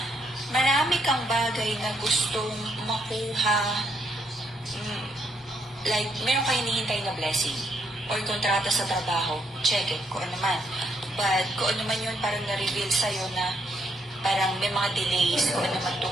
Marami kang bagay na gustong makuha, like meron kayo hinihintay na blessing or kontrata sa trabaho, check it, kung ano man. But kung ano man yun, parang na-reveal sa'yo na parang may mga delays kung ano man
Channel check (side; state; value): both; normal; correlation 0.73